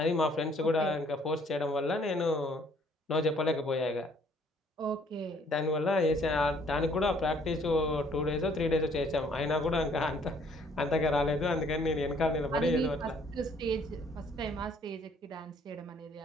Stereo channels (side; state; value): both; normal; correlation 0.62